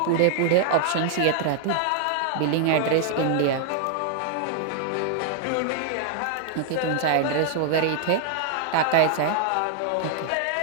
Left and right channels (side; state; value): both; different; correlation 0.00